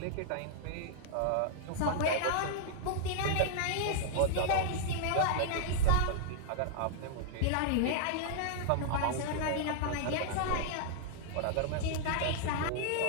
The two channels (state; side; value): different; both; correlation -0.01